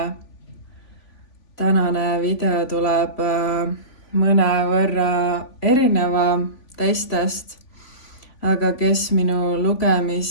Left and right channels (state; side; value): late; right; 3.5 ms